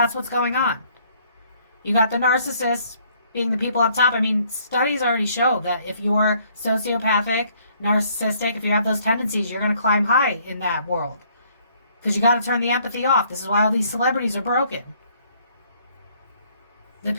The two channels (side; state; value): both; inverted; correlation -0.64